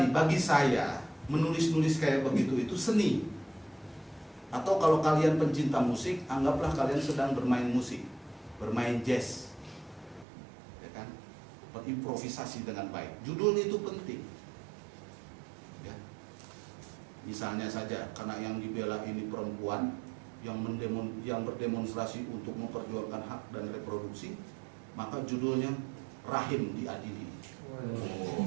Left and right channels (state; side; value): drops out; left; at 10.2 s